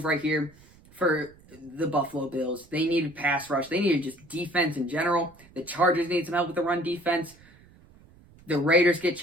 right here for the Buffalo Bills. They needed pass rush. They needed just defense in general. The Chargers need some help with the run defense. The Raiders get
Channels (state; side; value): noise; right; rumble, 26 dB below the sound